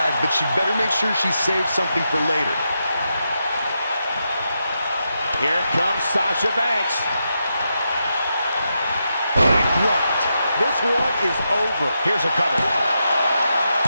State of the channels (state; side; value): inverted; both; correlation -0.85